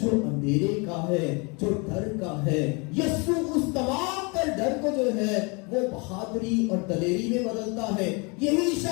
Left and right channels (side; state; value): right; quieter; 30.7 dB